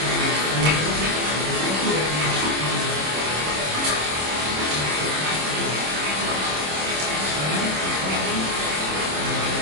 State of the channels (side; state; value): left; late; 26 ms